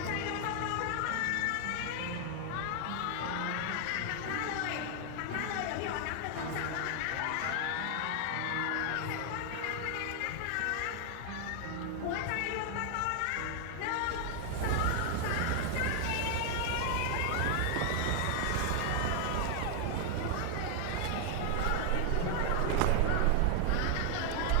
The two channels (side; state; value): both; different; correlation 0.00